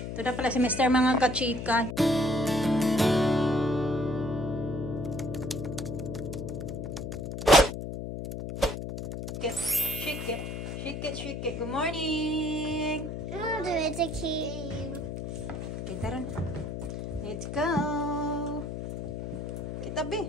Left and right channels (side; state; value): left; noise; hum, 6 dB below the sound